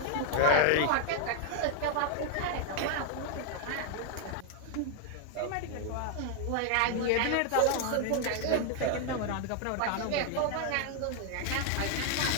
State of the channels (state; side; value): different; both; correlation 0.00